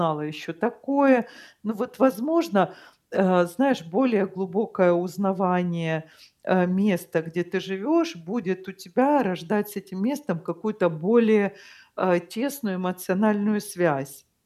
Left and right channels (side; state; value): both; identical; correlation 1.00